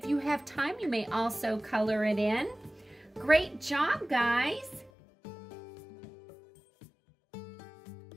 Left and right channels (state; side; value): drops out; right; at 4.9 s